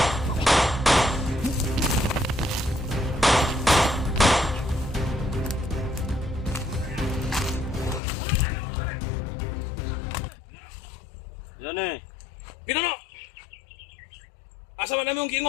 Yan eh. Pinono. Asa man namin yung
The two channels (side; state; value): right; drops out; at 8.0 s